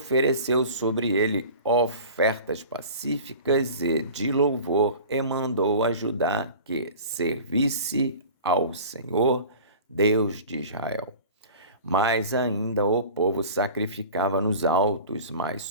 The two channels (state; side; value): inverted; both; correlation -0.39